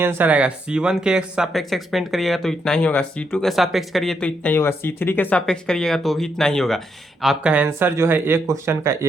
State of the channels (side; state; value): both; normal; correlation 0.79